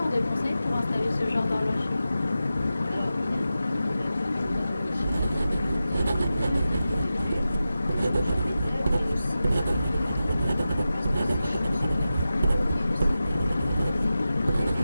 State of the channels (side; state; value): both; inverted; correlation -0.92